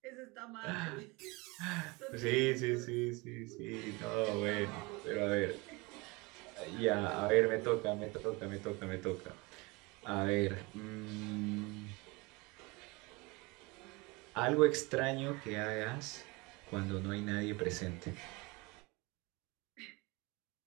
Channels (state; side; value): quieter; left; 25.7 dB